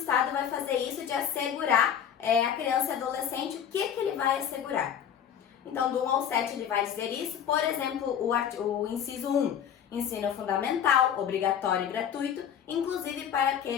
vai fazer isso de assegurar a criança e adolescente, o que ele vai assegurar. Então, do 1 ao 7 ele vai dizer isso, por exemplo, o inciso 1, ensino fundamental, obrigatório e gratuito, inclusive para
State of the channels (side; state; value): right; quieter; 8.9 dB